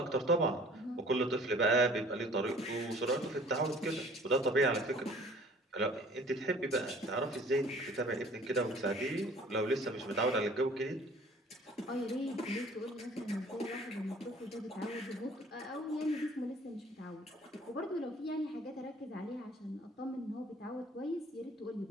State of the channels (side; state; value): both; normal; correlation 0.52